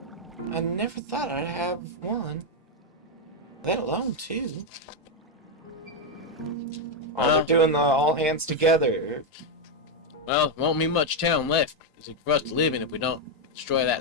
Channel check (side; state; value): both; normal; correlation 0.02